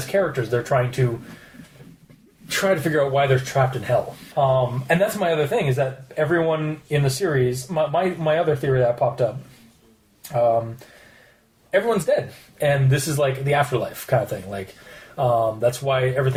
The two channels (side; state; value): both; identical; correlation 1.00